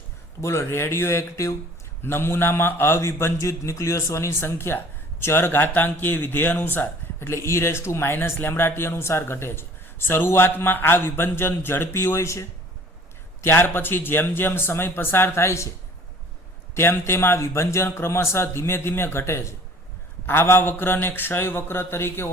તો બોલો રેડિયો એક્ટિવ નમૂનામાં અવિભંજિત ન્યુક્લિયસોની સંખ્યા ચર ઘાતાંકીય વિધેય અનુસાર એટલે e−λt અનુસાર ઘટે છે. શરૂઆતમાં આ વિભંજન ઝડપી હોય છે. ત્યાર પછી જેમ જેમ સમય પસાર થાય છે તેમ તેમ આ વિભંજન ક્રમશઃ ધીમે ધીમે ઘટે છે. આવા વક્રને ક્ષય વક્ર તરીકે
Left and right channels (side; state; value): both; normal; correlation 0.50